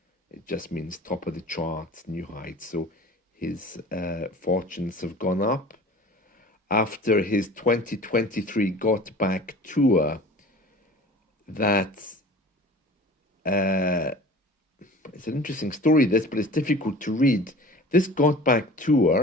It just means top of the charts, new heights. So his fortunes have gone up after his 2023 Got Back tour. That's it's an interesting story, this, but it's difficult to read. This Got Back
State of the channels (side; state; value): both; normal; correlation 0.42